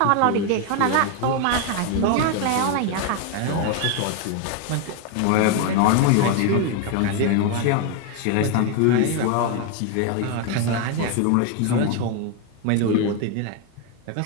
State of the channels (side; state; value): both; different; correlation 0.01